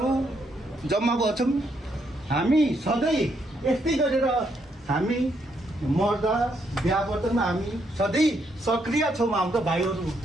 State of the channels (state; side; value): normal; both; correlation 0.75